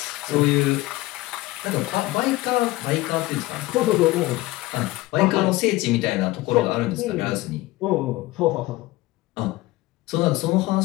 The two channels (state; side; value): quieter; right; 18.7 dB